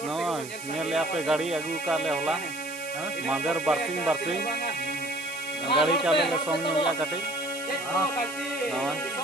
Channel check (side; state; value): right; noise; hiss, 13 dB below the sound